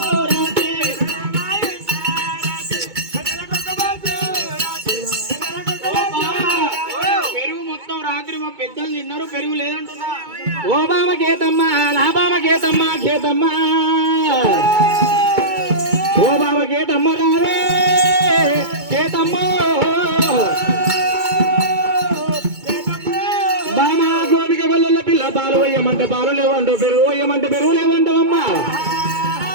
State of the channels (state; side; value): late; left; 2.2 ms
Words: పెద్దలు తిన్నారు పెరుగు లేదంటున్నా ఓ బామ కేతమ్మ నా బామ కేతమ్మ కేతమ్మ ఓ బామ కేతమ్మ రావే కేతమ్మ బామ గోపిక గొల్లల పిల్ల పాలు వేయమంటే పాలు లేవంటో పెరుగు వేయమంటే పెరుగు లేవంటావమ్మా